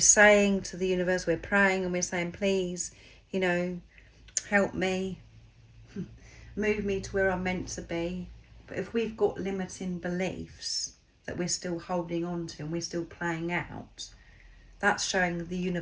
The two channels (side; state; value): both; identical; correlation 1.00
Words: saying to the universe, we're praying and we're saying, please, you know, help me, move me to where I'm meant to be. But if we've got limiting beliefs that we're still holding on to and we're still playing out, that's showing the